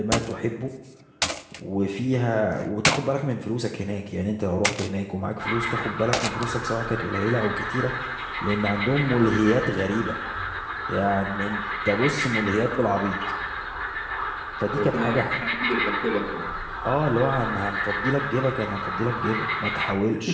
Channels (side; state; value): both; identical; correlation 1.00